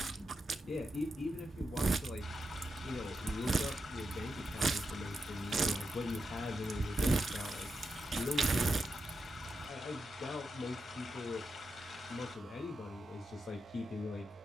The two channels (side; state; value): both; normal; correlation 0.86